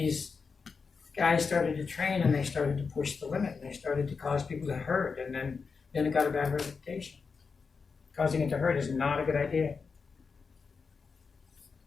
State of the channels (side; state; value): right; quieter; 5.1 dB